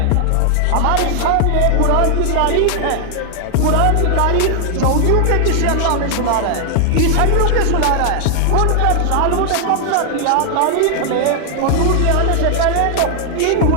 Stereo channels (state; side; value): different; both; correlation 0.00